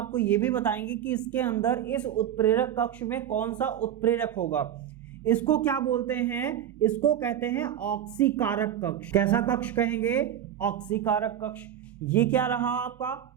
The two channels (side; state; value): left; quieter; 10.3 dB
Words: ये भी बताएंगे कि इसके अंदर इस उत्प्रेरक कक्ष में कौन सा उत्प्रेरक होगा। इसको क्या बोलते हैं, इसको कहते हैं ऑक्सीकारक कक्ष। कैसा कक्ष कहेंगे, ऑक्सीकारक कक्ष। ये क्या रहा आपका